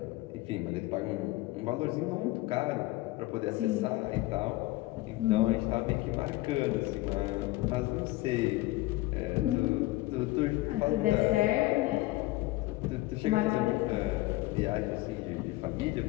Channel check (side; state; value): right; quieter; 18.9 dB